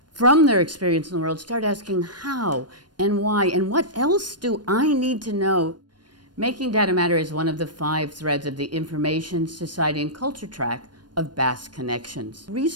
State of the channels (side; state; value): left; late; 0.70 ms